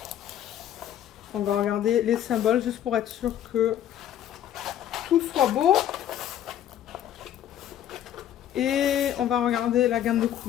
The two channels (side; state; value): right; quieter; 11.0 dB